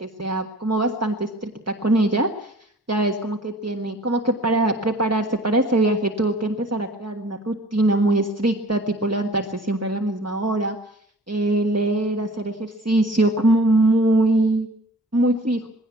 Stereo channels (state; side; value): normal; both; correlation 0.48